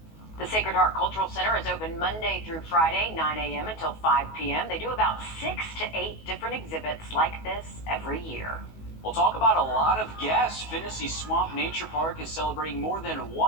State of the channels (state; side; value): late; right; 19 ms